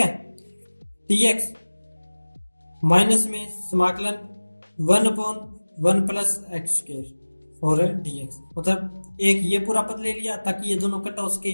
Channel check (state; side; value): inverted; both; correlation -1.00